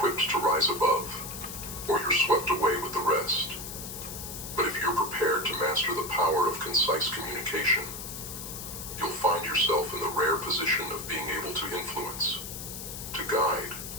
to rise above, or you're swept away with the rest. But if you're prepared to master the power of concise communication, you'll find yourself in the rare position of being able to influence, to guide,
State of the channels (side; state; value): left; noise; hiss, 9 dB below the sound